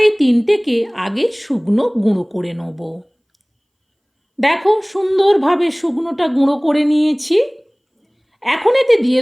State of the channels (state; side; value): identical; both; correlation 1.00